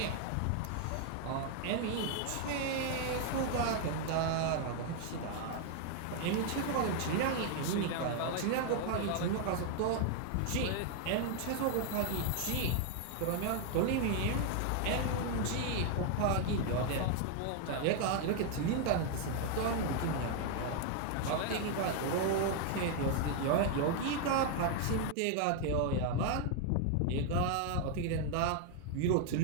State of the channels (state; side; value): different; both; correlation 0.00